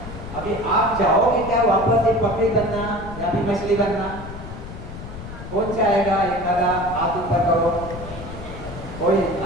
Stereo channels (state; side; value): noise; left; rumble, 11 dB below the sound